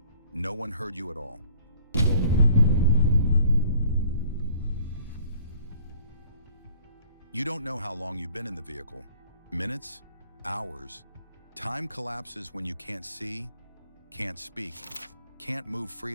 no one heard you at all. You don't know how long you've been in the vehicle. Minutes? Hours? Time collapses when you can't see, can't speak, can't move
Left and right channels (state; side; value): inverted; both; correlation -0.56